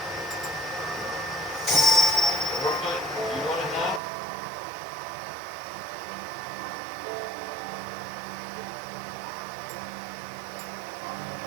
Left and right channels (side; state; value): left; drops out; at 4.0 s